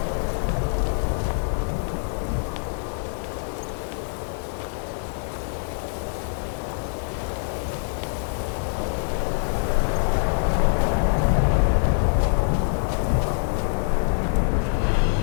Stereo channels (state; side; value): silent; right; digital silence